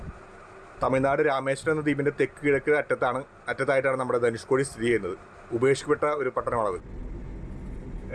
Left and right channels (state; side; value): identical; both; correlation 1.00